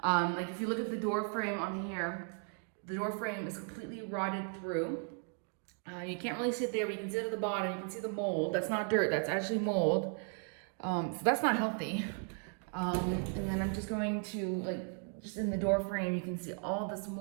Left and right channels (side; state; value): left; quieter; 39.2 dB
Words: Like if you look at the door frame on here, the door frame is completely rotted through. You can't really see it there, but you can see it at the bottom. You can see the mold. That's not dirt, that's actually mold. So that's not healthy. And then I'm just going to, just in the door frame, you can see all this